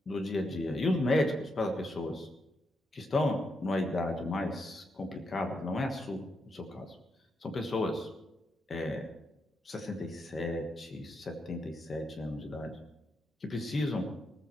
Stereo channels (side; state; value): both; normal; correlation 0.82